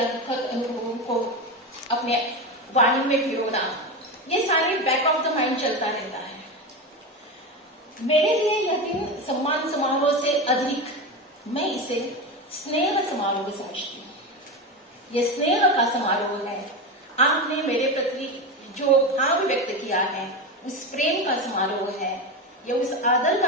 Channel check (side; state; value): both; normal; correlation 0.19